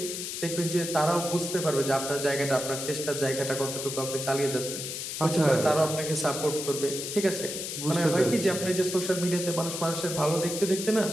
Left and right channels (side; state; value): left; noise; hiss, 5 dB below the sound